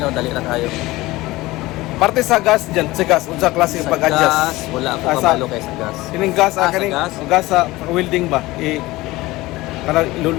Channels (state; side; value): quieter; right; 19.4 dB